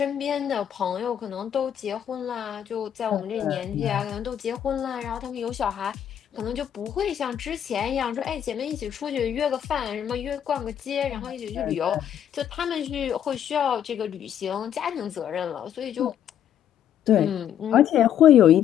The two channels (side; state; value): right; quieter; 9.8 dB